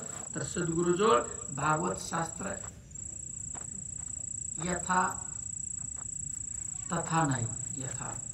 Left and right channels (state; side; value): identical; both; correlation 1.00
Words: तर सद्गुरुजवळ भागवत शास्त्र यथा तथा नाही, यथा